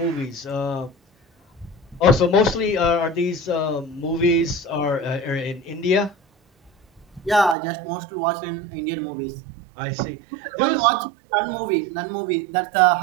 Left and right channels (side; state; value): left; drops out; at 7.6 s